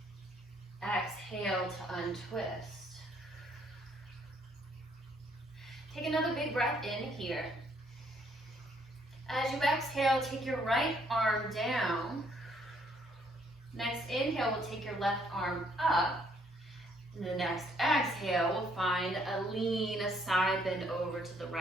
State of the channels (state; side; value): normal; both; correlation 0.67